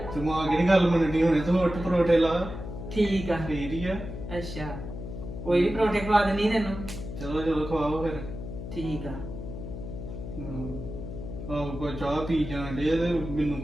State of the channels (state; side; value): noise; left; hum, 9 dB below the sound